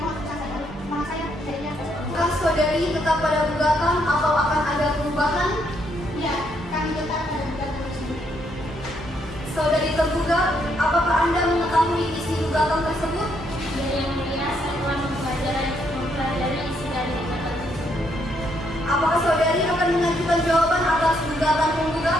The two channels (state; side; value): normal; both; correlation 0.74